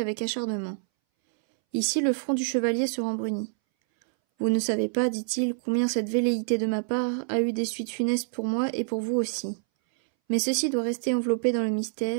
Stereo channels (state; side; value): silent; left; 60 dB below the other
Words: acharnement. Ici le front du chevalier se rembrunit. Vous ne savez pas, dit-il, combien cette velléité de ma part a eu des suites funestes pour moi et pour vous aussi. Mais ceci doit rester enveloppé dans le